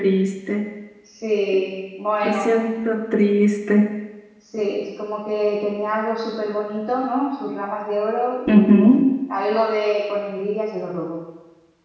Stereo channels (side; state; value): both; identical; correlation 1.00